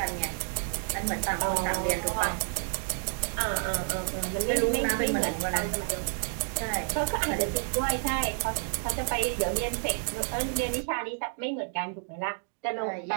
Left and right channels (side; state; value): left; silent; digital silence